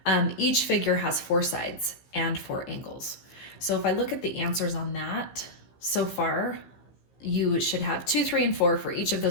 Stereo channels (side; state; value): right; late; 15 ms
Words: Each figure has 4 sides and 4 angles. So if I look at the answers on that, so far, you should have 2, 3, and 4 for each of